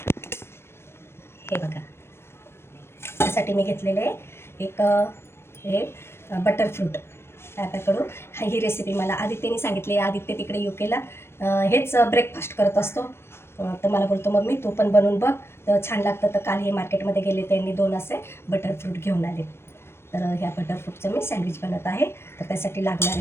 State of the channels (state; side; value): late; right; 0.12 ms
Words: हे बघा, त्यासाठी मी घेतलेले एक हे बटर फ्रूट त्याच्याकडून. ही रेसिपी मला आदित्यने सांगितली. आदित्य तिकडे युकेला हेच ब्रेकफास्ट करत असतो. तर मला बोलतो, मम्मी तू पण बनवून बघ, तर छान लागतं. तर काल हे मार्केटमध्ये गेले, त्यांनी 2 असे बटर फ्रूट घेऊन आले. तर ह्या बटर फ्रूटचं मी सँडविच बनवत आहे. तर त्यासाठी